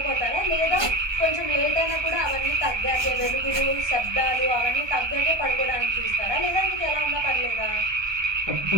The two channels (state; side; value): late; left; 1.2 ms